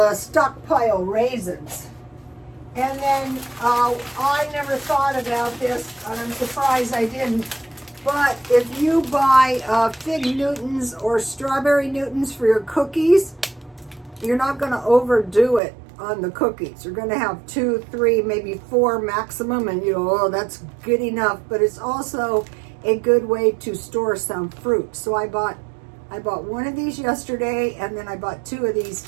stockpile raisins. And then I never thought about this, and I'm surprised I didn't. But if you buy fig Newtons or strawberry Newtons for your cookies, you're not going to overdo it on the cookies. You're going to have 2, 3, maybe 4 maximum, and you go, oh, that's good enough. But it's also a good way to store some fruit. So I bought one of these yesterday, and then I bought 2 of these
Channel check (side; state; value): left; drops out; at 15.6 s